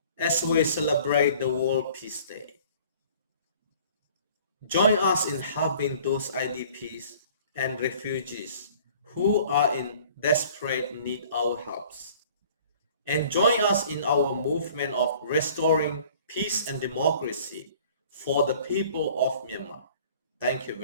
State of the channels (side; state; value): both; inverted; correlation -0.51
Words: as we celebrate the World Peace Day. Join us in helping those IDPs and refugees who are in desperate need our helps. And join us in our movement of restoring peace and democracy for the people of Myanmar. Thank you